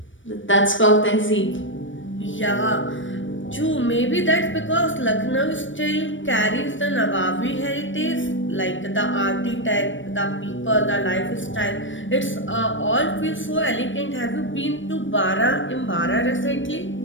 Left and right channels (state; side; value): late; right; 0.56 ms